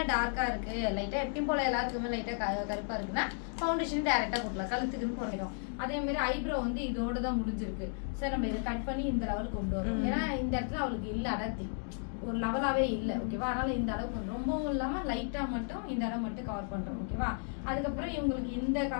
டார்க்கா இருக்கு, லைட்டா எப்பயும் போல எல்லாருக்குமே லைட்டா கருப்பா இருக்குன்னா ஃபவுண்டேஷன் டைரக்டா போடலாம். கழுத்துக்குன்னு போடணும். அதே மாதிரி ஐப்ரோ வந்து இதோட தான் முடிஞ்சிருக்கு. சரி, நம்ம இதை கட் பண்ணி இந்த லெவலுக்கு கொண்டு வரோம். ஏன்னா இந்த இடத்துல அவளுக்கு இல்ல அடர்த்தி, ஒரு லெவலாவே இல்லை. ஓகேவா? அதனால இந்த அளவுக்கு ரொம்பவும் இல்லாம லைட்டா மட்டும் இந்த இடம் மட்டும் கவர் பண்றோம். ஓகேவா? அதுக்கப்புறம் இவங்களுக்கு இந்த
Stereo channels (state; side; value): silent; right; 55 dB below the other